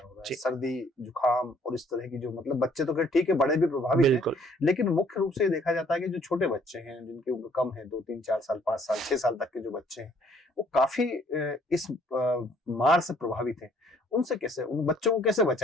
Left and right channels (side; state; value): both; normal; correlation 0.62